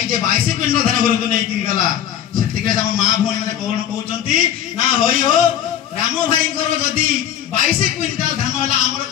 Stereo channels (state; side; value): quieter; right; 10.3 dB